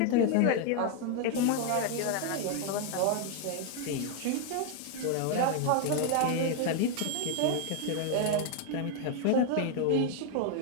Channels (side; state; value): both; different; correlation 0.00